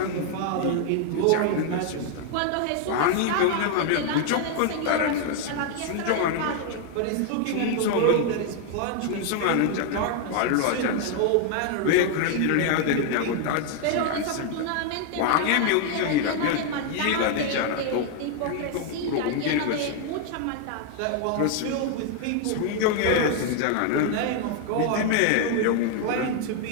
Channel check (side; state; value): both; different; correlation 0.00